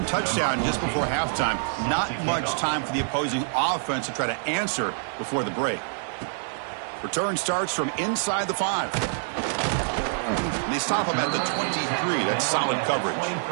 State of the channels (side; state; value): left; silent; digital silence